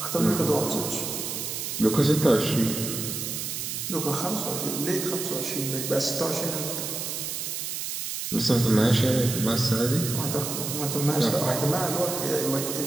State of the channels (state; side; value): noise; right; hiss, 4 dB below the sound